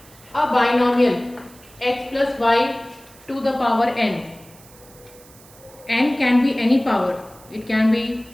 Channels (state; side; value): noise; right; hiss, 24 dB below the sound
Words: a binomial x plus y to the power n. N can be any power. It can be